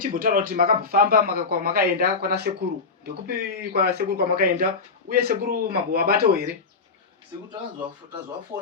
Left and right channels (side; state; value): right; quieter; 4.5 dB